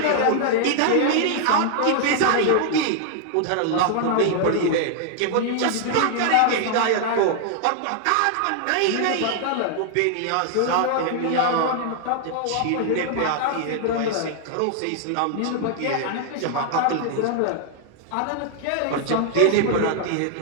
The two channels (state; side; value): different; both; correlation 0.00